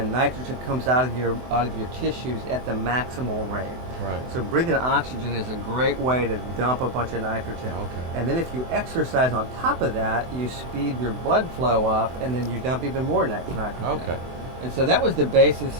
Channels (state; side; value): late; left; 24 ms